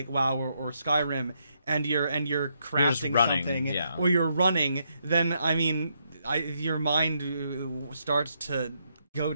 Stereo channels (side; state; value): both; inverted; correlation -0.77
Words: or Skyrim, and you're crafting something, or you're running, then I mean, your mind starts to go